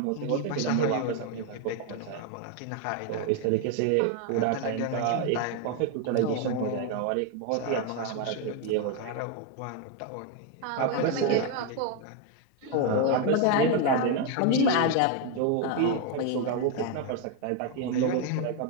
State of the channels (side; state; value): both; different; correlation 0.01